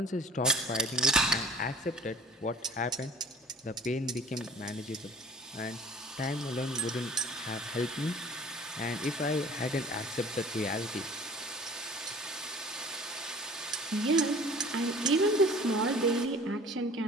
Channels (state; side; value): normal; both; correlation 0.47